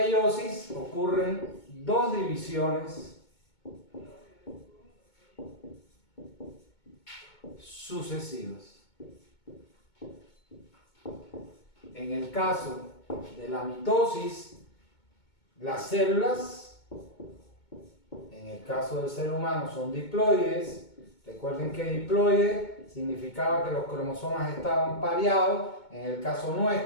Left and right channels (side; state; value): right; late; 2.2 ms